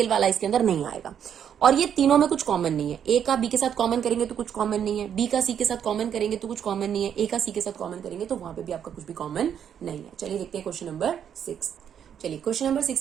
वाला इसके अंदर नहीं आएगा, और ये तीनों में कुछ कॉमन नहीं है। ए का बी के साथ कॉमन करेंगे तो कुछ कॉमन नहीं है, बी का सी के साथ कॉमन करेंगे तो कुछ कॉमन नहीं है, ए का सी के साथ कॉमन करेंगे तो वहां पे भी आपका कुछ भी कॉमन नहीं है। चलिए देखते हैं क्वेश्चन नंबर 6। चलिए क्वेश्चन नंबर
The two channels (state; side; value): quieter; left; 8.7 dB